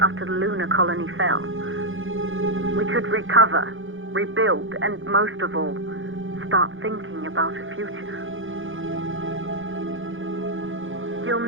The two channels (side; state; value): left; late; 0.58 ms